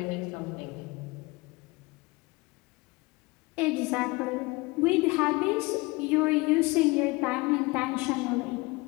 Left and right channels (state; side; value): quieter; right; 23.6 dB